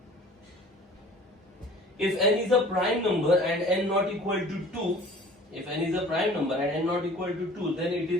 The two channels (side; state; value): both; normal; correlation 0.47